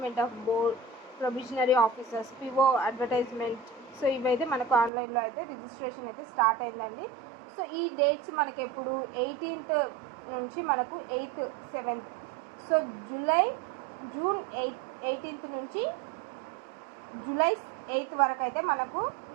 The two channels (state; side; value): drops out; left; at 4.9 s